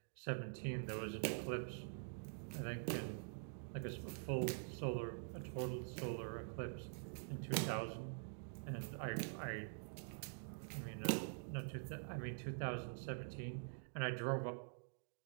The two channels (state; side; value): silent; left; digital silence